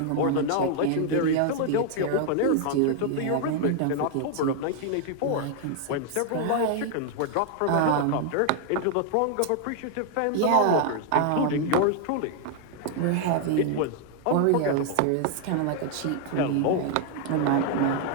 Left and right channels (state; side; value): different; both; correlation 0.00